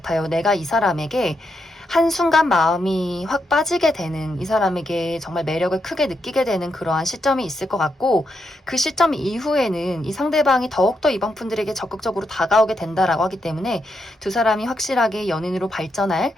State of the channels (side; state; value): both; normal; correlation 0.82